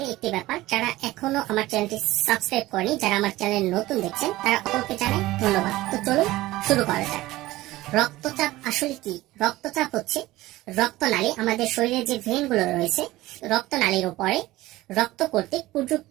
একটি ব্যাপার, যারা এখনো আমার চ্যানেলটি সাবস্ক্রাইব করেনি, যারা আমার চ্যানেল নতুন দেখছেন তারা অপরকে জানাই ধন্যবাদ। তো চলুন শুরু করা যাক। রক্তচাপ আসলে কি? রক্তচাপ হচ্ছে রক্তনালী, আমাদের শরীরে যে ভেনগুলো রয়েছে রক্তনালীর উপরে রক্ত কর্তৃক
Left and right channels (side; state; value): left; quieter; 17.7 dB